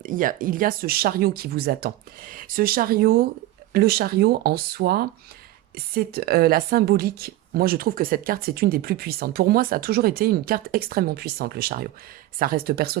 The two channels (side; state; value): left; quieter; 16.0 dB